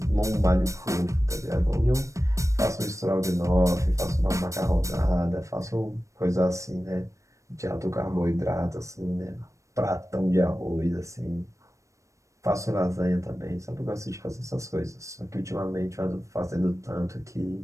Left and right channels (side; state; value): left; late; 0.15 ms